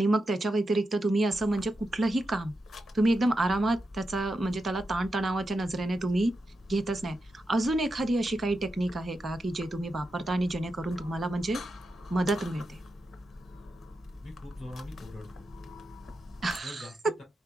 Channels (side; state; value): both; normal; correlation 0.88